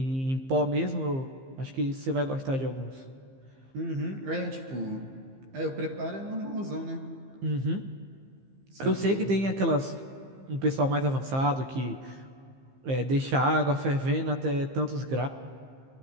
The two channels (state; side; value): late; left; 15 ms